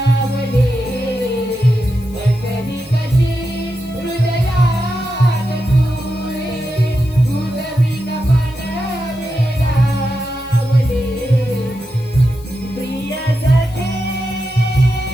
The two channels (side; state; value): left; noise; hiss, 24 dB below the sound